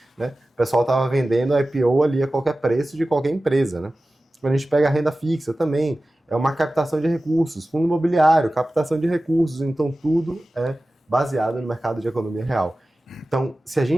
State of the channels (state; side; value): normal; both; correlation 0.96